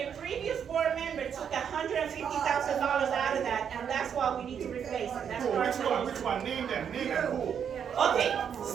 a previous board member took $150,000 out of that, and that's why we need to replace it. That's Who? part Which of one? it. Which one? Name them. Name them. Who? Okay,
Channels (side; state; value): left; quieter; 7.9 dB